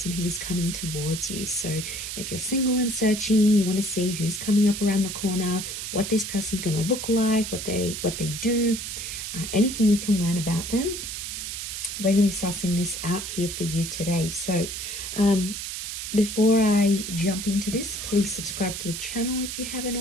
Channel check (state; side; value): noise; right; hiss, 6 dB below the sound